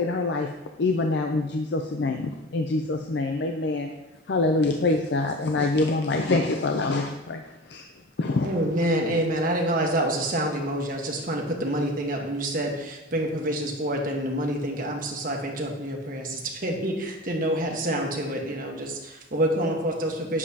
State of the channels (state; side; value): normal; both; correlation 0.33